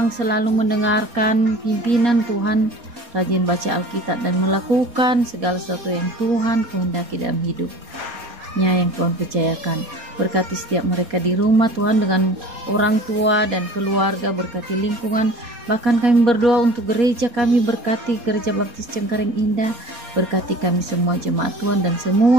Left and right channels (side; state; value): left; late; 4.2 ms